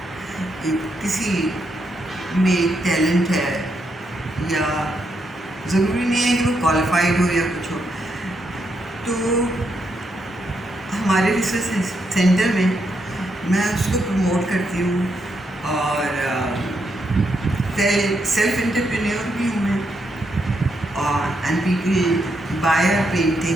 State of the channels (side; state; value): both; normal; correlation 0.80